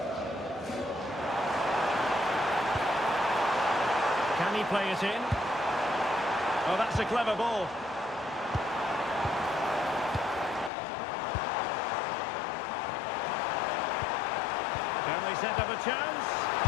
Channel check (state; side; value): drops out; right; at 10.7 s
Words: Can he play it in? Oh, that's a clever ball. Can they set up a chance?